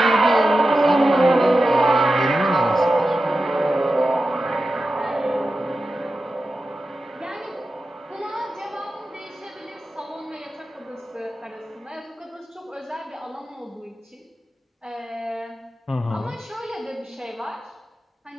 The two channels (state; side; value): normal; both; correlation 0.92